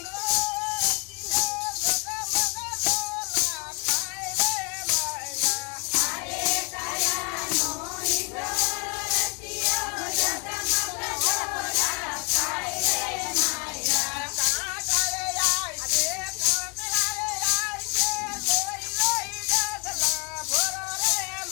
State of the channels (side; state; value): right; quieter; 33.4 dB